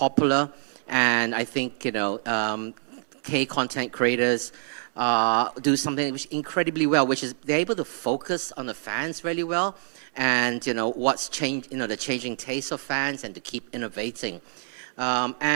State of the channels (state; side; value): silent; left; digital silence